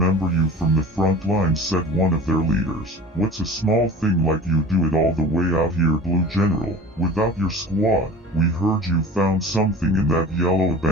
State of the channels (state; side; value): normal; both; correlation 0.41